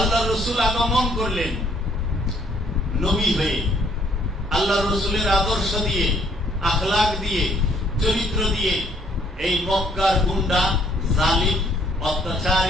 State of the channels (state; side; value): normal; both; correlation 0.65